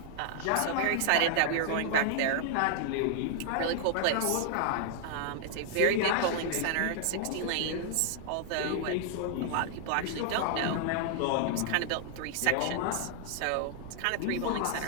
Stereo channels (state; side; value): different; both; correlation -0.01